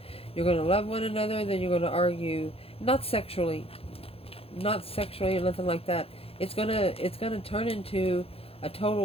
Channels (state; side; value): late; right; 0.28 ms